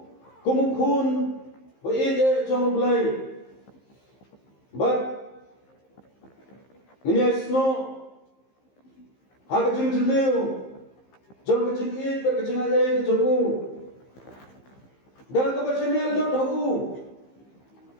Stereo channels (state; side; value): late; right; 15 ms